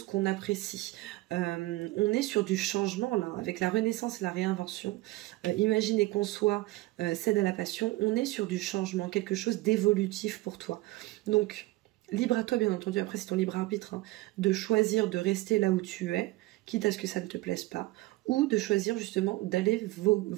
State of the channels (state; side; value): quieter; left; 19.6 dB